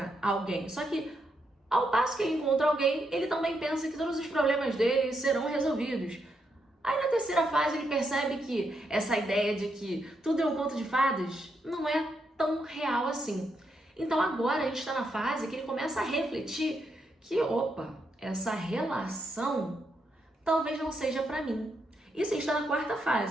alguém. Só que ao passo que ele encontra alguém, ele também pensa que todos os problemas dele serão resolvidos. Aí na terceira fase ele percebe que essa ideia de que tudo é um conto de fadas não é tão real assim. Então agora a gente está na fase que ele começa a refletir que, essa relação talvez não seja para mim. Isso está na quarta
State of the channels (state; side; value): normal; both; correlation 0.80